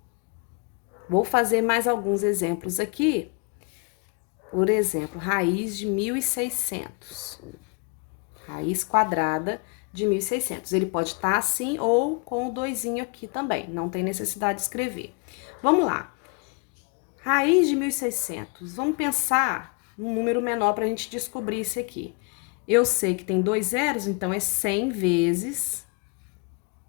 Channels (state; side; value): quieter; right; 32.0 dB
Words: Vou fazer mais alguns exemplos aqui. Por exemplo, raiz de 1.600. Raiz quadrada de 1.600. Ele pode estar assim ou com o 2 aqui também. Não tem necessidade de escrever. Vamos lá. Raiz de 1.600. Vamos pensar num número menor para a gente descobrir isso aqui. Eu sei que tem 2 zeros, então é 100 vezes